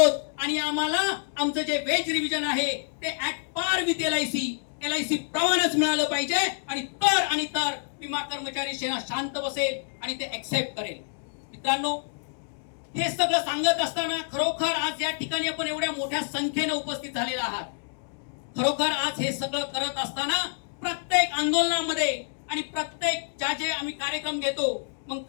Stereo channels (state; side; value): silent; right; digital silence